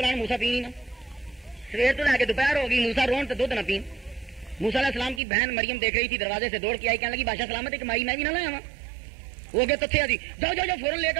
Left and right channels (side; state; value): left; drops out; at 5.2 s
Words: موسیٰ پی نہیں نا. سویر تو لے کے دوپہر ہو گئی, موسیٰ رون تو دودھ نہ پین. موسیٰ علیہ السلام کی بہن مریم دیکھ رہی تھی, دروازے سے دوڑ کے آئی, کہنے لگی بادشاہ سلامت ایک مائی میں بھی نہ لایا ہوں. وہ گئے تو تھے جی, جاؤ جاؤ جاؤ فوراً لے